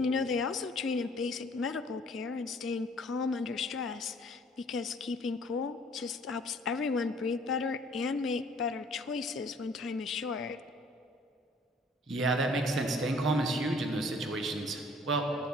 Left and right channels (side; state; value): both; normal; correlation 0.56